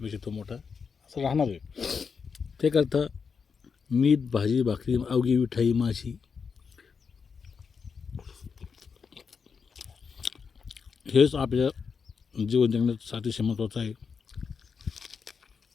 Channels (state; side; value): quieter; right; 5.8 dB